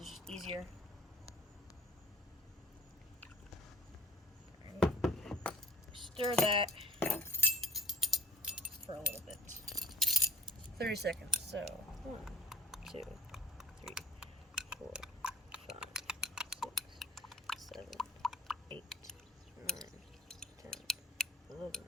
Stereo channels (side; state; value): both; normal; correlation 0.47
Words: just easier. Right. Stir that for a little bit. 30 seconds. So 1, 2, 3, 4, 5, 6, 7, 8, 9, 10. 11,